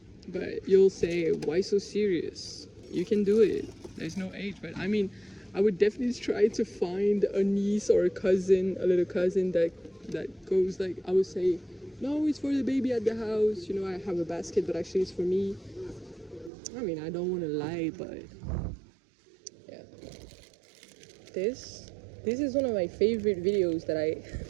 but you'll say, why so serious? You can do it. There's no age, but I mean, I would definitely try to find a niece or a cousin, a little cousin that goes like, I would say, no, it's for the baby at the house. You know, I have a basket, but actually it's for me. I mean, I don't want to lie, but yeah. This is one of my favorite videos that I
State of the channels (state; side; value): drops out; left; at 16.5 s